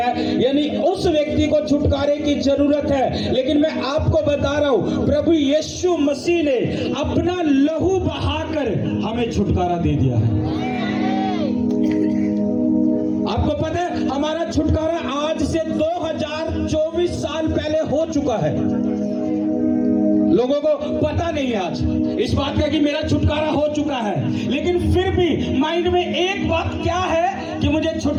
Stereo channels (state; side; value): identical; both; correlation 1.00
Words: यानी उस व्यक्ति को छुटकारे की जरूरत है। लेकिन मैं आपको बता रहा हूं, प्रभु यीशु मसीह ने अपना लहू बहाकर हमें छुटकारा दे दिया है। आपको पता है हमारा छुटकारा आज से 2024 साल पहले हो चुका है। लोगों को पता नहीं है आज इस बात का कि मेरा छुटकारा हो चुका है, लेकिन फिर भी माइंड में एक बात क्या है कि मुझे